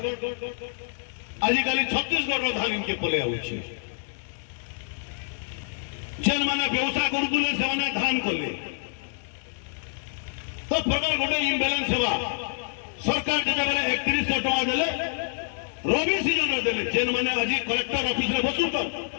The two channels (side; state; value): right; silent; digital silence